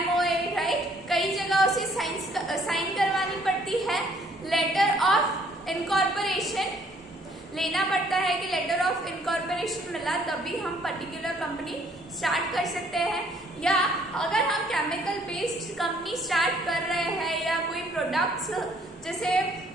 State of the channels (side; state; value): both; normal; correlation 0.63